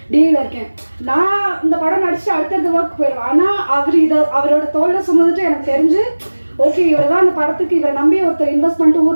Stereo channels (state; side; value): inverted; both; correlation -1.00